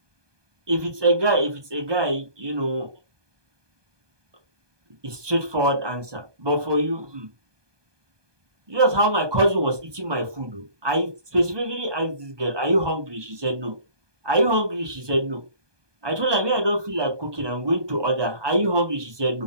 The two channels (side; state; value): left; late; 1.2 ms